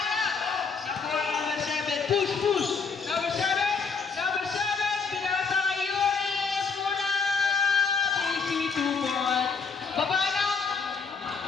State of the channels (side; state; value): right; quieter; 5.2 dB